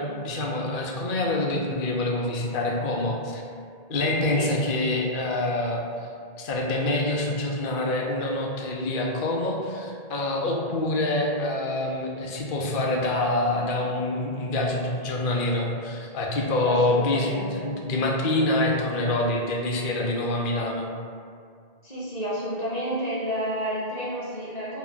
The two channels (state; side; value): late; right; 1.8 ms